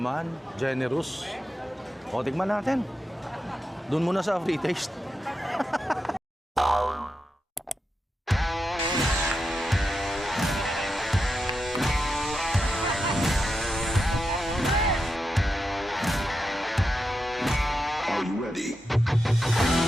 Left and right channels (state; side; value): normal; both; correlation 0.87